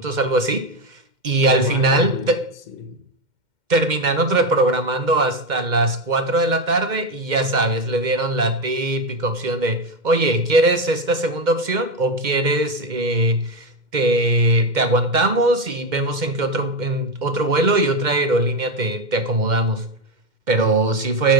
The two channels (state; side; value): late; left; 2.1 ms